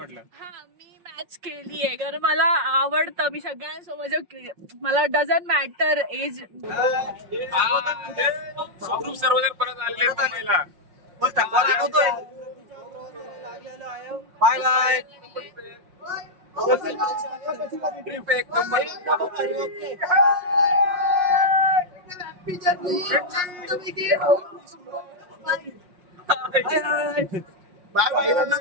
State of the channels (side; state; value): left; late; 5.5 ms